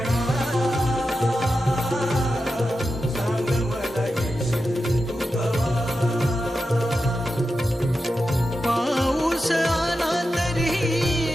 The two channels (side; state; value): both; normal; correlation 0.90